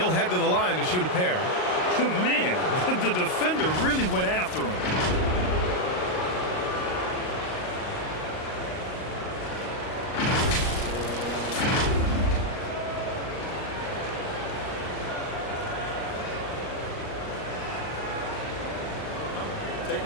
head to the line to shoot a pair. Man, the defender really went after him. Take a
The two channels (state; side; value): late; right; 38 ms